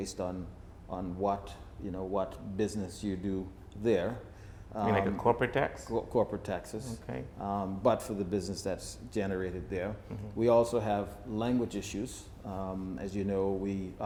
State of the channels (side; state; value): both; identical; correlation 1.00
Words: on what business you do there. Like a corporate tax? Corporate taxes, okay. But for the business that's generated there. We also have language issues. As you know, we